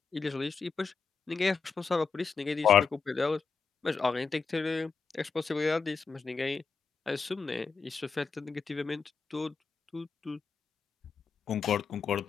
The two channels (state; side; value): quieter; right; 5.1 dB